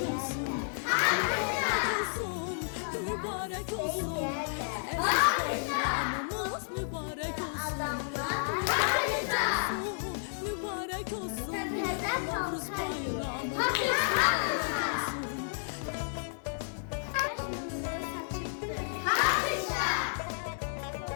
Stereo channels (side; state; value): right; silent; digital silence